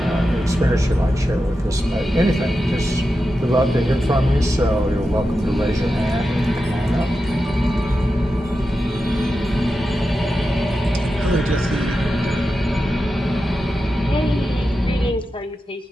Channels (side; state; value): both; normal; correlation 0.90